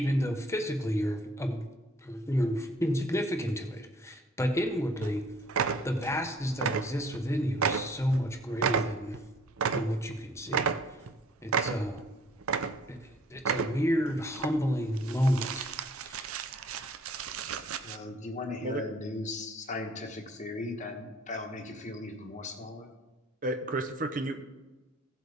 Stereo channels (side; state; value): both; normal; correlation 0.56